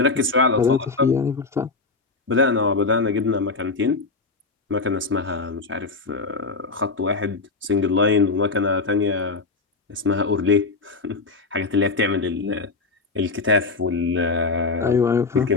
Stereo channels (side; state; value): right; quieter; 4.0 dB